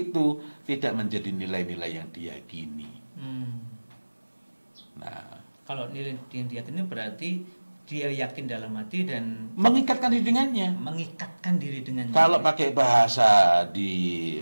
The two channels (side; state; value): both; inverted; correlation -1.00